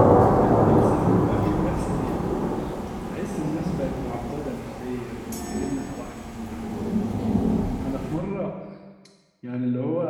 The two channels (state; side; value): identical; both; correlation 1.00